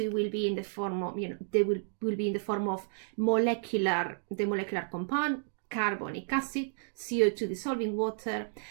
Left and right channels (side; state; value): left; silent; digital silence